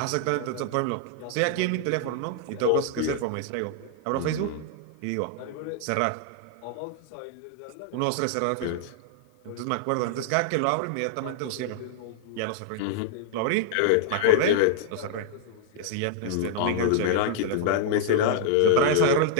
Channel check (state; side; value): different; both; correlation -0.01